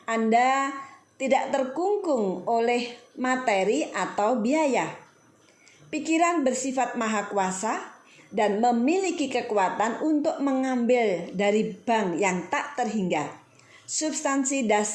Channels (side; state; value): both; identical; correlation 1.00